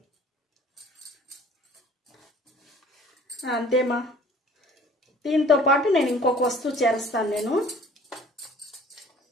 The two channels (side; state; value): both; normal; correlation 0.51